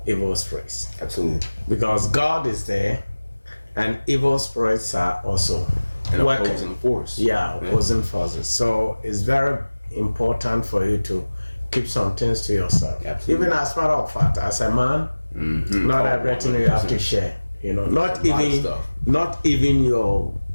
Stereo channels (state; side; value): inverted; both; correlation -1.00